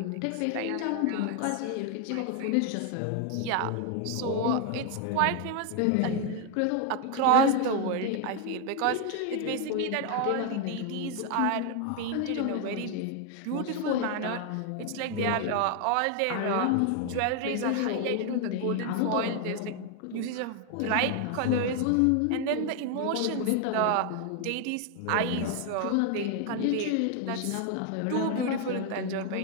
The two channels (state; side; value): different; both; correlation 0.01